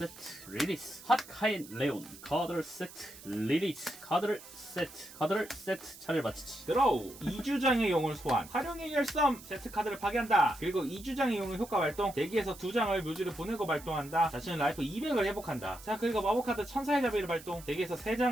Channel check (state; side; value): noise; right; hiss, 18 dB below the sound